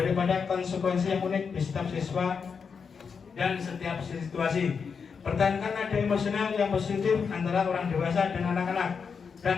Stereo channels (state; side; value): quieter; right; 5.9 dB